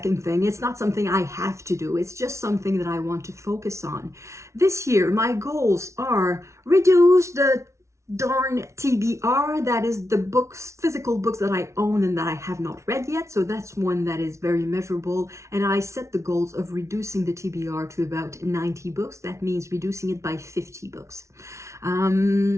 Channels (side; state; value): left; late; 0.14 ms